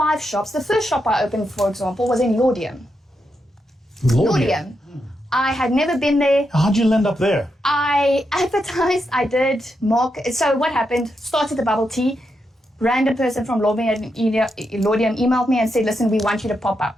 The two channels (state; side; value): normal; both; correlation 0.84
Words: shops. The first shop I opened, for example, was in Laudium. Laudium. I had never been there. How'd you end up there? I advertised, I did market. So what happened, started the bubble tea. Random person from Laudium emailed me and said, listen, we want you to pop